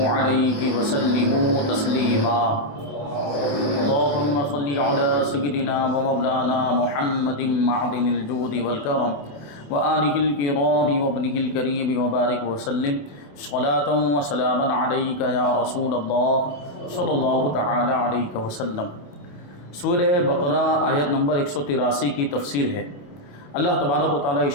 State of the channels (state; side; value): late; right; 28 ms